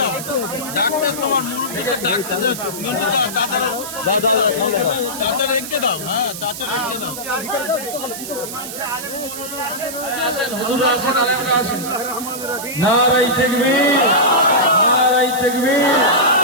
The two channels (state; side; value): noise; right; hiss, 9 dB below the sound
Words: ডাকতেছ তোমার মুরব্বীকে ডাকতেছে, চাচা রেখে দাও, হ্যাঁ চাচা রেখে দাও। নারায়ে তাকবীর, নারায়ে তাকবীর।